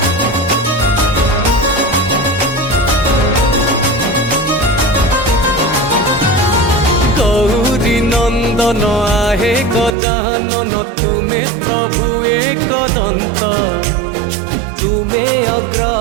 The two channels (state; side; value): drops out; left; at 10.0 s